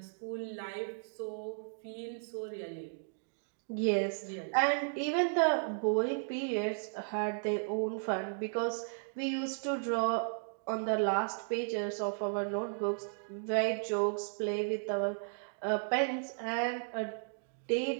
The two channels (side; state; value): left; silent; digital silence